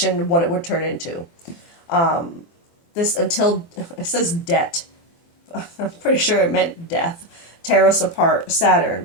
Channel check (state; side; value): late; right; 24 ms